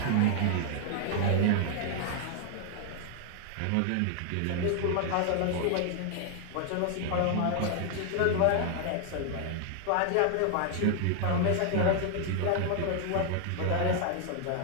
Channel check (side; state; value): both; different; correlation 0.00